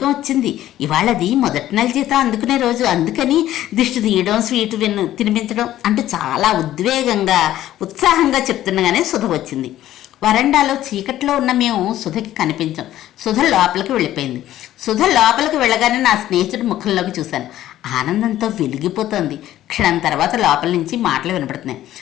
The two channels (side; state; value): right; quieter; 13.3 dB